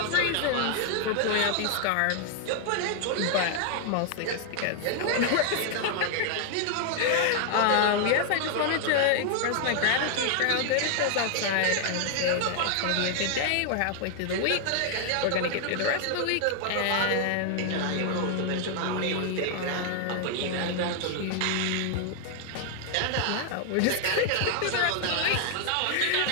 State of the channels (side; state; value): both; different; correlation 0.00